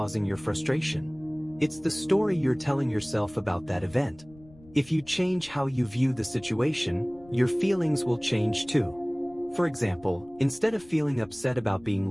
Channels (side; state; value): left; noise; rumble, 24 dB below the sound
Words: your frustration. It's the story you're telling yourself about that event. If you change how you view the situation, your feelings will change too. For example, instead of feeling upset about being